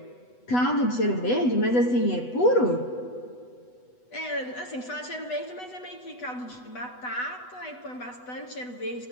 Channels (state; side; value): late; right; 8.1 ms